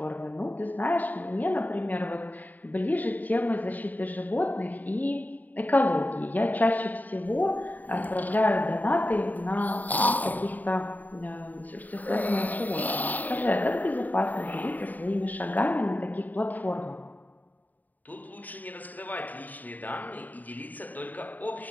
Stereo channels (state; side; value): late; right; 0.082 ms